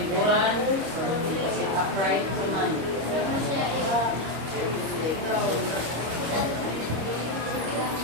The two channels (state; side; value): late; left; 25 ms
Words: Sit upright naman.